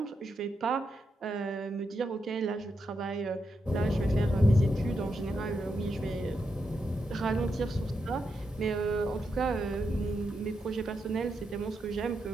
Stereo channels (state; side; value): normal; both; correlation 0.84